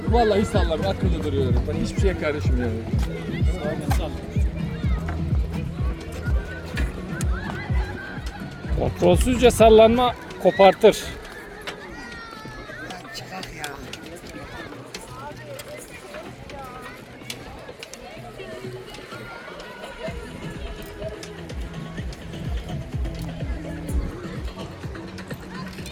Vallahi sallamıyor. Akıllı duruyorum. Ben hiçbir şeye karışmıyorum. Kontrolsüzce sallanma kopartır.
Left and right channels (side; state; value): both; identical; correlation 1.00